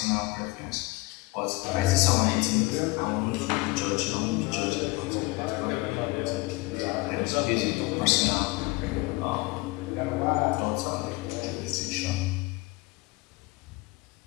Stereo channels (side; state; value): right; quieter; 23.6 dB